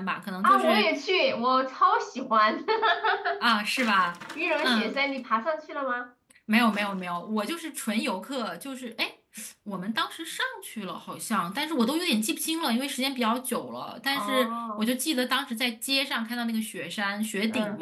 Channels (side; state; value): both; identical; correlation 1.00